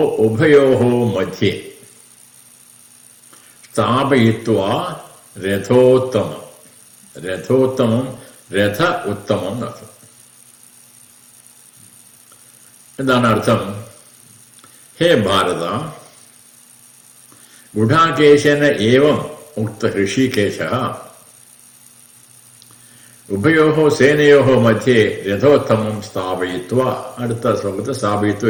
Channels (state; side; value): identical; both; correlation 1.00